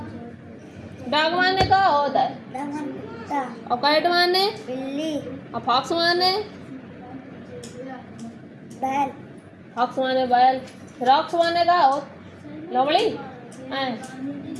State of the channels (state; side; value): identical; both; correlation 1.00